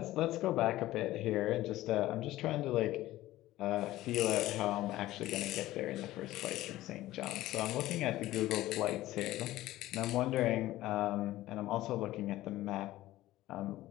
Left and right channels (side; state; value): right; quieter; 15.9 dB